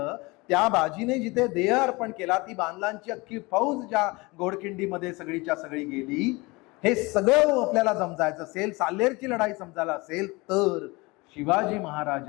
त्या बाजीने जिथे देह अर्पण केला, ती बांधलांची अख्खी फौज ज्या घोडखिंडीमध्ये सगळीच्या सगळी गेली, हे सगळं आपल्याला समजायचं असेल, साल्हेरची लढाई समजायला असेल तर शिवाजी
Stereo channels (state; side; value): quieter; right; 24.4 dB